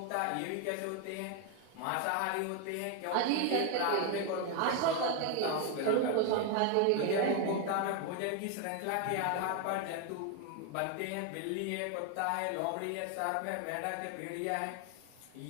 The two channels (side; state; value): both; different; correlation 0.01